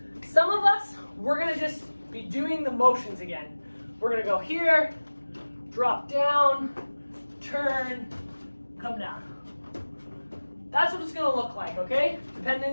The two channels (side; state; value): both; inverted; correlation -1.00